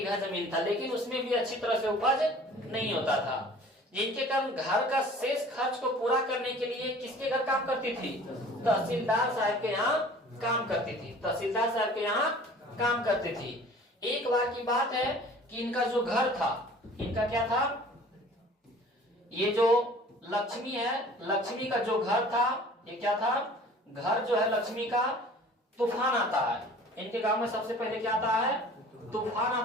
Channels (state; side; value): normal; both; correlation 0.47